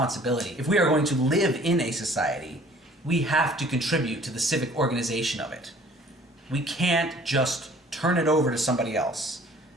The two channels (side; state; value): both; normal; correlation 0.53